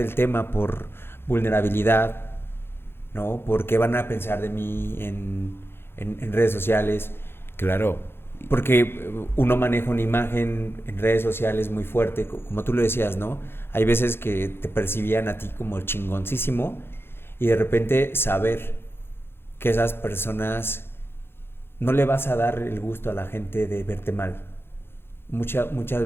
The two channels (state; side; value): late; right; 0.11 ms